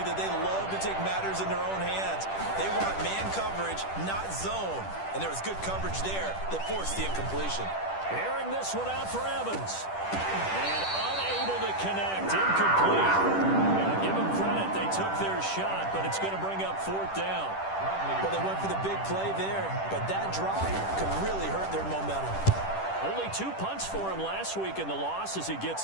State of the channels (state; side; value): late; right; 10 ms